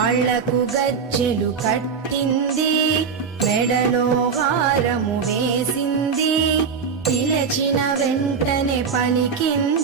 గజ్జెలు కట్టింది, మెడలో హారము వేసింది, పిలచిన వెంటనే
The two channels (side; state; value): left; quieter; 5.9 dB